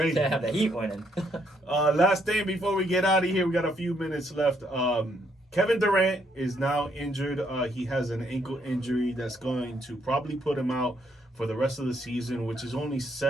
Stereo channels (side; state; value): both; normal; correlation 0.72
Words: Can't have the Heat winning. Last thing before we get out of here, we got a few minutes left. Kevin Durant is now injured. He has an ankle injury that's going to probably put him out for the rest of the season, which is only